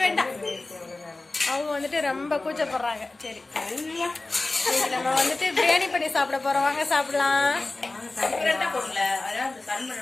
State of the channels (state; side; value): quieter; right; 3.2 dB